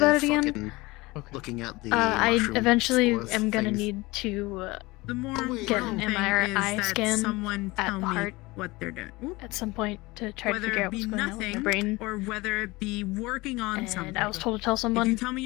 it again. Looking at the I eventually am gonna need to get an thing MRI is that scan someone at tell the me heart what they're doing. at some point to try to Whether figure it out be what's going on with my nothing, brain. or whether it be working on something. And I was told to tell someone. If you tell me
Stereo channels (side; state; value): right; quieter; 22.1 dB